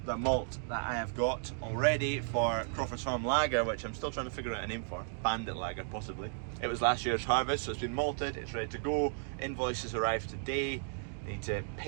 the malt that I have got already for CrawfordsFarm Lager, which I'm still trying to figure out a name for, Bandit Lager possibly. It was last year's harvest, so it's been malted, it's ready to go. Invoices arrived today. Need to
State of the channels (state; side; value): silent; left; 55 dB below the other